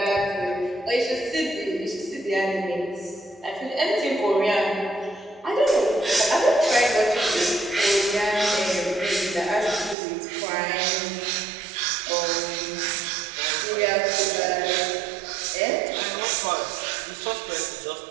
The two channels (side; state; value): left; drops out; at 10.0 s